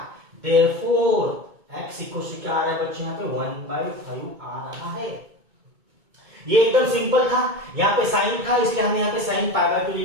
Therefore x equals to क्या आ रहा है बच्चों, यहाँ पे 1/5 आ रहा है। ये एकदम सिंपल था, यहाँ पे साइन था इसलिए हमने यहाँ पे साइन π/2 ले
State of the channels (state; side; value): late; left; 2.2 ms